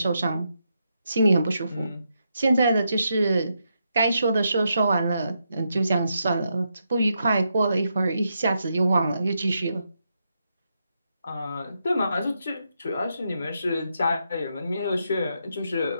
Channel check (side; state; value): both; inverted; correlation -0.82